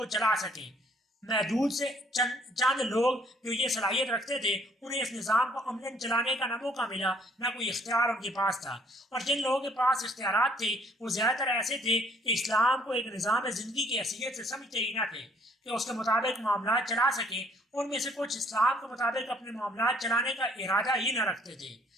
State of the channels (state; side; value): normal; both; correlation 0.62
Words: چلا سکیں۔ محدود سے چند لوگ جو یہ صلاحیت رکھتے تھے، انہیں اس نظام کو عملاً چلانے کا نہ موقع ملا، نہ کوئی اختیار ان کے پاس تھا، اور جن لوگوں کے پاس اختیارات تھے وہ زیادہ تر ایسے تھے کہ اسلام کو ایک نظام زندگی کی حیثیت سے سمجھتے ہی نہ تھے کہ اس کے مطابق معاملات چلا سکیں۔ ان میں سے کچھ اسلام کے مطابق اپنے معاملات چلانے کا ارادہ ہی نہ رکھتے تھے۔